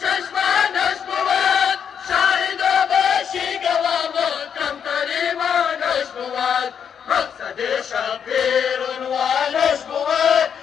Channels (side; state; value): right; quieter; 7.7 dB